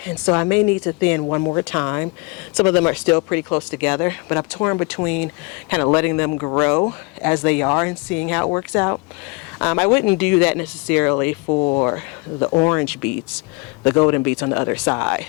and so I may need to thin one more time. Some of them are still pretty close together, but I'm torn between kind of letting them grow as they are and seeing how it works out. I wouldn't do that necessarily for the orange beets, the golden beets on the other side,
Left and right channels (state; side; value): quieter; right; 28.4 dB